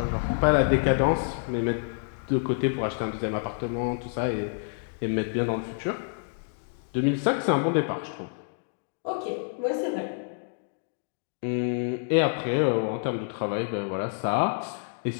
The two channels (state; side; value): silent; right; digital silence